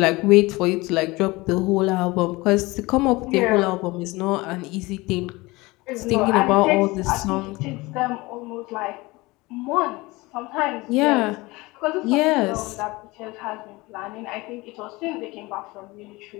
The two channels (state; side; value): quieter; right; 22.3 dB